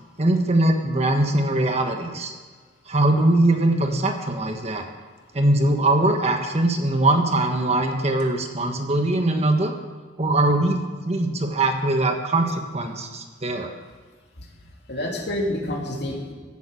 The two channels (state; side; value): normal; both; correlation 0.54